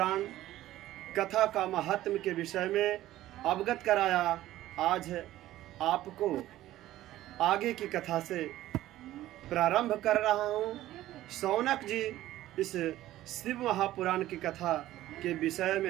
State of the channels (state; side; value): quieter; left; 14.7 dB